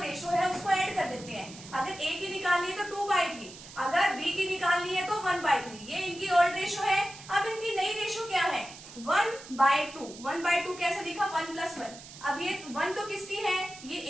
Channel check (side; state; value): right; noise; hiss, 16 dB below the sound